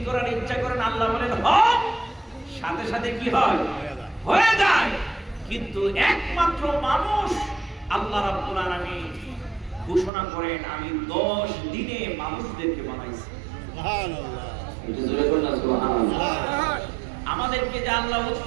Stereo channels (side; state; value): left; drops out; at 10.1 s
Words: করার ইচ্ছা করেন আল্লাহ বলেন হও, সাথে সাথে কি হয়? হয়ে যায়। কিন্তু একমাত্র মানুষ আল্লাহ রাব্বুল আলামিন ঘোষণা করেন আমি 10 দিনে মানুষদেরকে বানাইছি। সুবহানাল্লাহ। এটা জোরে বলুন না সুবহানাল্লাহ। আমাদেরকে যে আল্লাহ